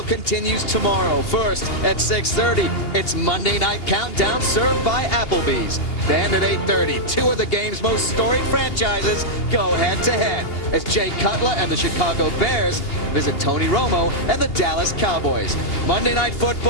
continues tomorrow. First, at 6:30, it's Monday Night Countdown served by Applebee's. Then at 8:30, 2 of the game's most storied franchises go head-to-head as Jay Cutler and the Chicago Bears visit Tony Romo and the Dallas Cowboys. Monday Night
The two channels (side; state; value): right; late; 2.8 ms